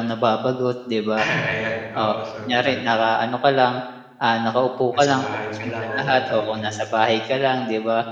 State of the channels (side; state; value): both; identical; correlation 1.00